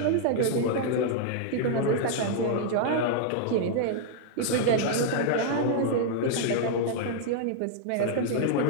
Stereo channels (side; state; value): both; different; correlation -0.01